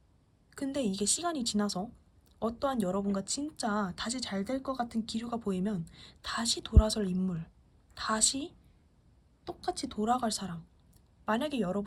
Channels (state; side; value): identical; both; correlation 1.00